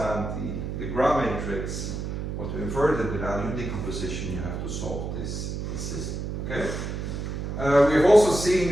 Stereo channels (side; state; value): right; noise; hum, 4 dB below the sound